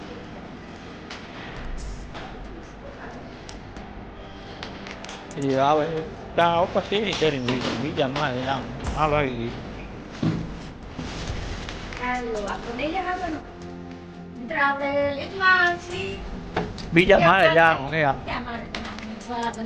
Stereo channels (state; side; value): identical; both; correlation 1.00